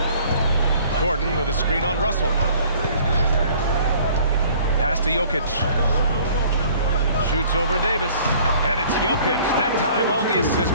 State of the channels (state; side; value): inverted; both; correlation -0.54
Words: Gordon with a screen on Russell. Pass to Jokic. Shoots over Davis. And it's Jokic. That time on the assist